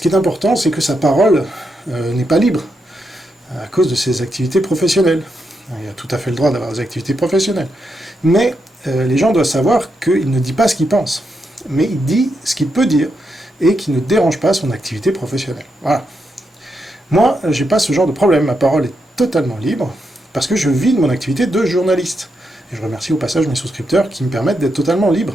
qui est important, c'est que sa parole n'est pas libre, à cause de ses activités professionnelles. Il a tout à fait le droit d'avoir des activités professionnelles. Mais les gens doivent savoir qu'il ne dit pas ce qu'il pense, mais il dit ce qu'il peut dire, et qui ne dérange pas son activité professionnelle. Voilà. Moi, j'ai pas ce genre de problème, ma parole est totalement libre, parce que je vis de mon activité de journaliste. Et je remercie au passage mes souscripteurs qui me permettent d'être totalement libre,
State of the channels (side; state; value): both; normal; correlation 0.83